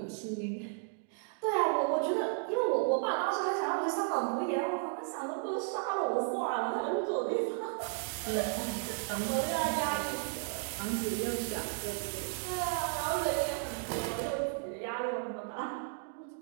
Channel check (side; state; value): left; silent; 55 dB below the other